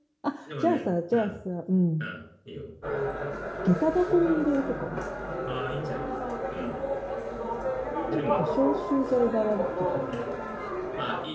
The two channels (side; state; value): both; identical; correlation 1.00